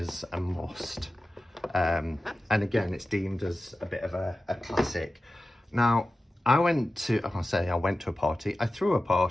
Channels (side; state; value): both; normal; correlation 0.94